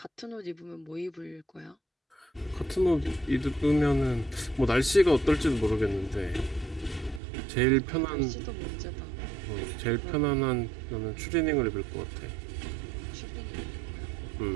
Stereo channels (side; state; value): left; drops out; at 7.2 s